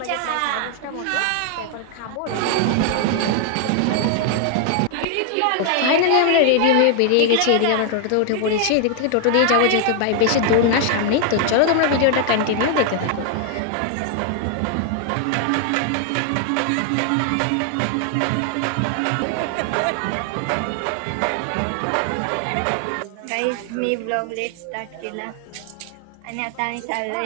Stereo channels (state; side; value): different; both; correlation 0.00